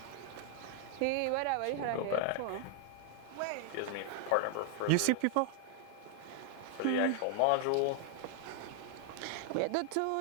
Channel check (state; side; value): different; both; correlation 0.00